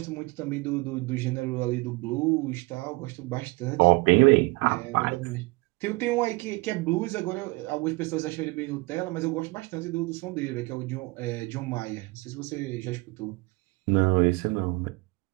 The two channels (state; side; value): quieter; left; 24.8 dB